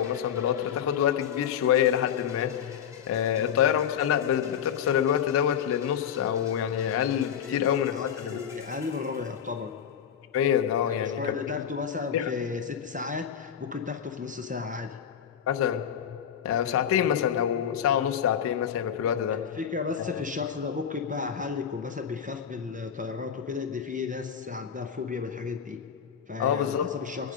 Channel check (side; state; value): right; quieter; 8.5 dB